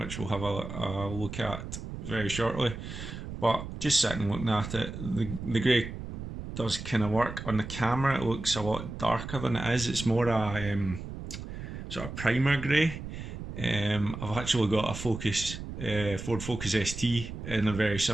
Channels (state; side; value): noise; right; rumble, 9 dB below the sound